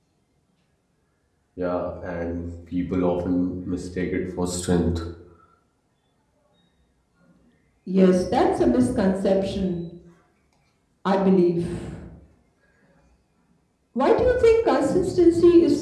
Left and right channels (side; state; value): both; identical; correlation 1.00